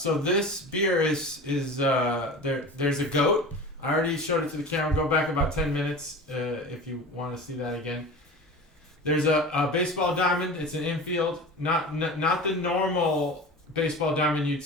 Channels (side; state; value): both; normal; correlation 0.34